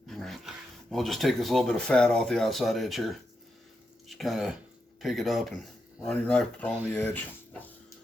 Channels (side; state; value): both; normal; correlation 0.86